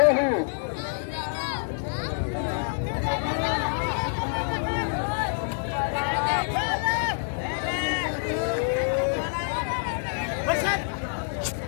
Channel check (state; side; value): silent; right; digital silence